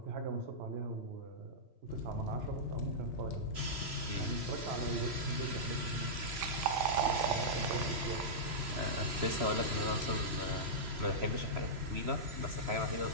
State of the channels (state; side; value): late; left; 3.0 ms